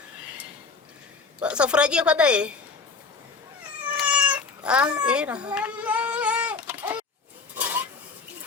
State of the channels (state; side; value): quieter; right; 4.5 dB